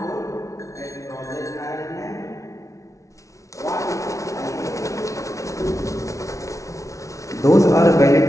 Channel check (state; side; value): late; right; 0.15 ms